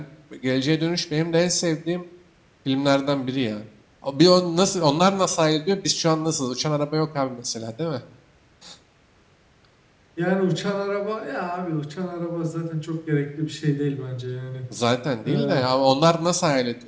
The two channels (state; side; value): identical; both; correlation 1.00